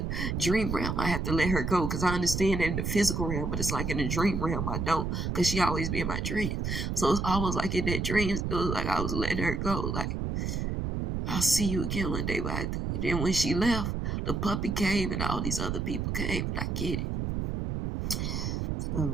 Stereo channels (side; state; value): right; noise; rumble, 1 dB below the sound